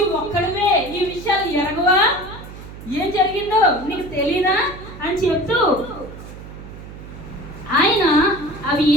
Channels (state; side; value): noise; right; hum, 14 dB below the sound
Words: ఒక్కడివే ఈ విషయాలు ఎరగవా? ఏం జరిగిందో నీకు తెలీదా అని చెప్తూ ఆయన అవి